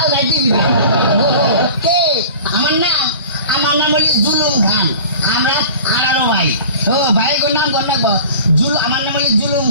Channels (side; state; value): both; inverted; correlation -0.41